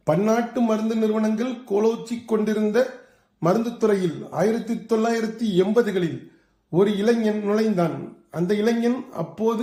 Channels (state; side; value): identical; both; correlation 1.00